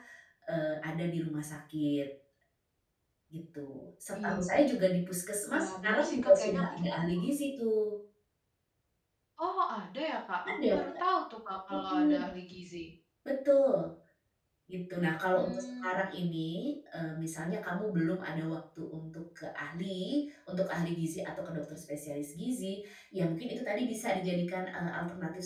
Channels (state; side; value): identical; both; correlation 1.00